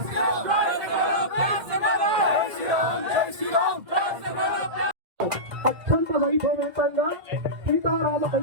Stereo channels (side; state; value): left; late; 1.9 ms